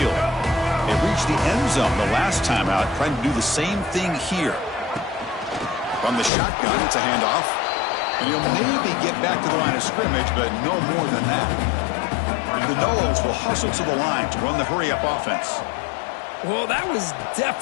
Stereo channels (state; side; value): drops out; right; at 6.3 s